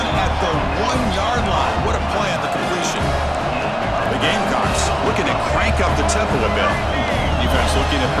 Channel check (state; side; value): identical; both; correlation 1.00